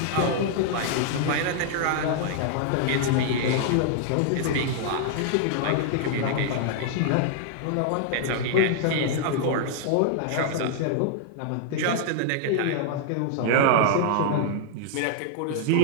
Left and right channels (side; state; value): both; different; correlation -0.01